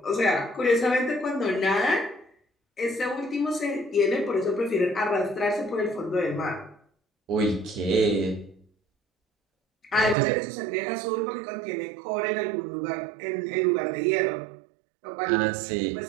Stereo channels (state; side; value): drops out; left; at 10.2 s